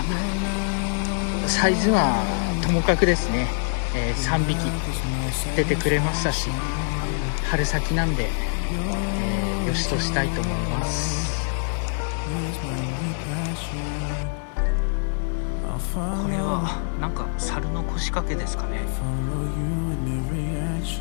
サイズはともかくですね、3匹出てくれましたし、春先なんで、よしとしたいと思います。これはなんか猿の腰掛けですかね。い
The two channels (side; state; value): right; silent; digital silence